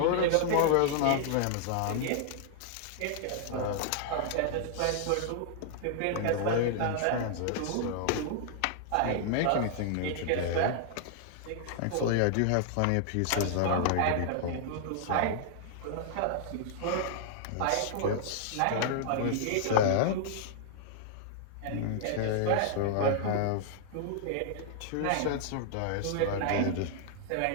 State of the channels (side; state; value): both; different; correlation 0.00